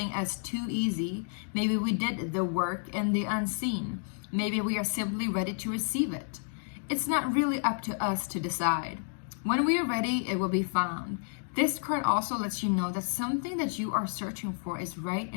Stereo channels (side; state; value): right; silent; digital silence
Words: as too easy. Maybe we did the work in the unseen. Maybe we are simply ready to receive it. It's not really up to us to decide. When we are ready, it will be found. This card also lets you know that something that you are searching for is right